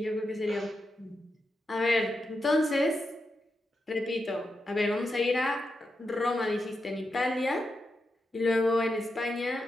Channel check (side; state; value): both; normal; correlation 0.87